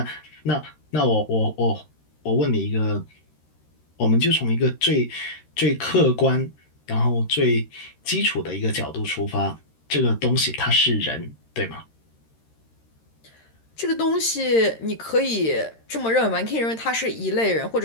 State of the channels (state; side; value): late; right; 13 ms